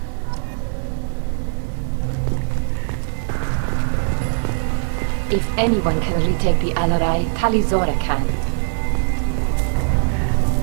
If anyone can retake the Alarai, Tali Zora can.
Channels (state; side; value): silent; left; 60 dB below the other